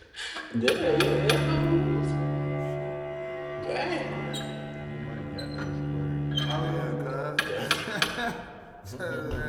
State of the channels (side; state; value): both; identical; correlation 1.00